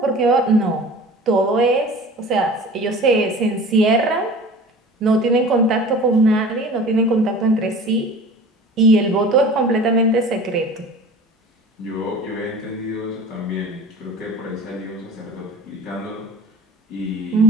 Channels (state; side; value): normal; both; correlation 0.40